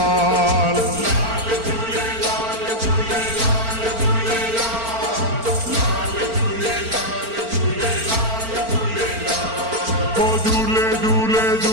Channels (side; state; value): left; late; 4.4 ms